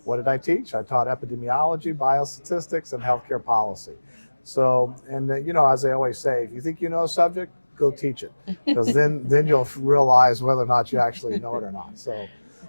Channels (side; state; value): both; inverted; correlation -1.00